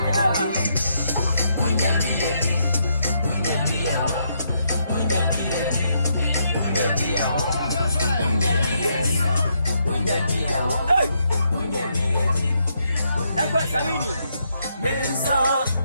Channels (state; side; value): inverted; both; correlation -0.77